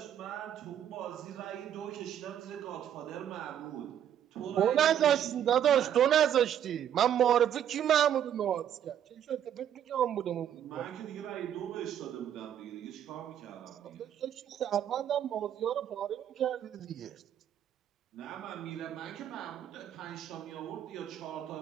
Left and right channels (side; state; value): left; quieter; 10.0 dB